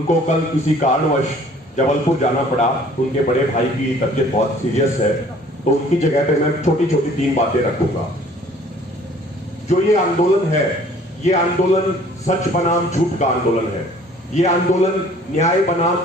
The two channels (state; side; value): normal; both; correlation 0.54